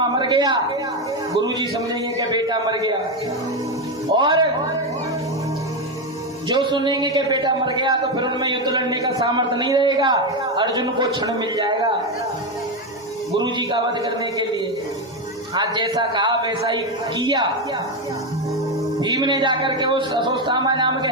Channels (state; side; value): normal; both; correlation 0.10